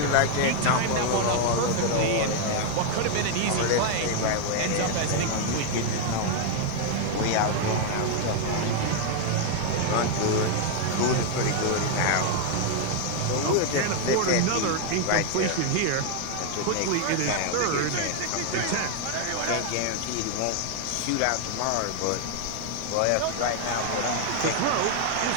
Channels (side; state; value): both; different; correlation 0.00